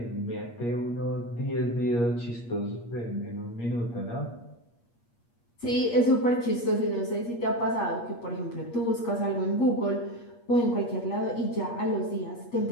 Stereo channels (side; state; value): right; late; 8.5 ms